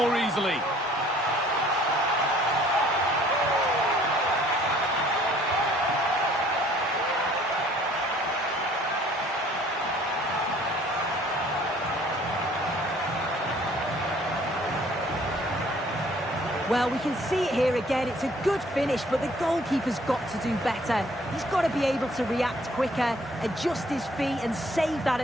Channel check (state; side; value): normal; both; correlation 0.57